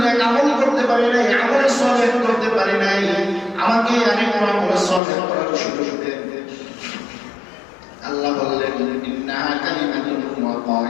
নেক আমল করতে পারি নাই, আমল সালেহ করতে পারি নাই, আমাকে আরেকটু আমল সালেহ করার সুযোগ দেন। আল্লাহ বললেন, ইন্নাহা কালিমাতুন হুয়া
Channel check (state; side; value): drops out; right; at 5.0 s